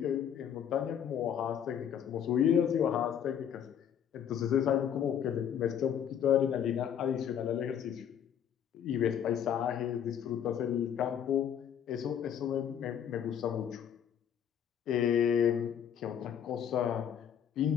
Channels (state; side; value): quieter; right; 8.9 dB